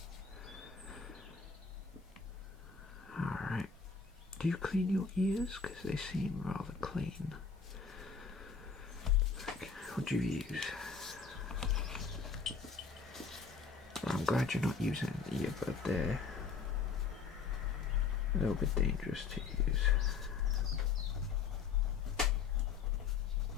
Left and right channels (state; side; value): quieter; right; 5.3 dB